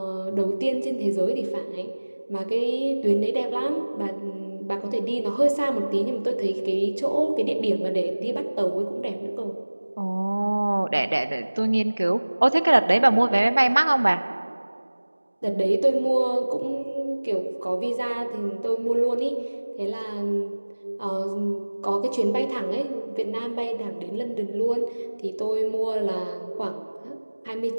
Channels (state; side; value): inverted; both; correlation -1.00